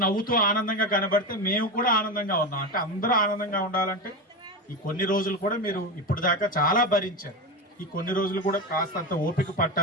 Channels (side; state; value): both; normal; correlation 0.19